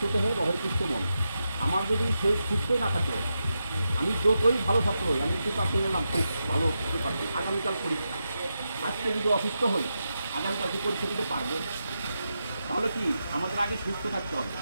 দেহে রহে সুস্থ মন। আমার যদি শরীর সুস্থই না থাকলো, আমি যতই ভালো ছাত্র হই, আমি প্রিপারেশন নিলাম খুব ভালো প্রিপারেশন, আগামীকাল পরীক্ষা, আজকে যদি অসুস্থ হই আগামীকালকে পরীক্ষা দিতে পারবো? তাহলে কি আমাদের আগে সুস্থ থাকতে হবে।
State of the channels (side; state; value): both; inverted; correlation -0.87